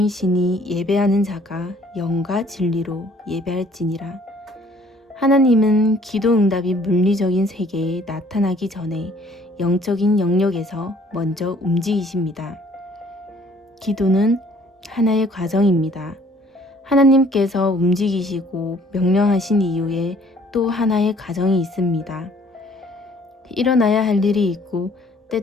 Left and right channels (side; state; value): both; normal; correlation 0.58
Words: 예배하는 자가 영과 진리로 예배할지니라. 하나님은 기도 응답이 물리적인 세계에 나타나기 전에 영적인 영역에서 먼저 움직이십니다. 기도는 하나의 과정입니다. 하나님께서 움직이시고 명령하신 이후에 또 하나의 과정이 있습니다. 일어나야 할 일이 있고